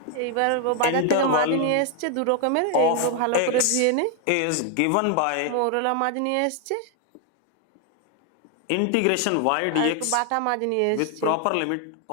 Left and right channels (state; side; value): different; both; correlation 0.00